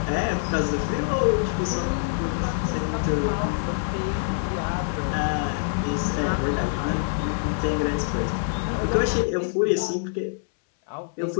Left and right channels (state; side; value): silent; right; 62 dB below the other